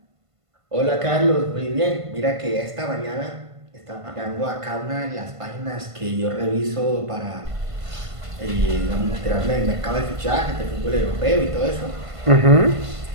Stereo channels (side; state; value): left; late; 1.5 ms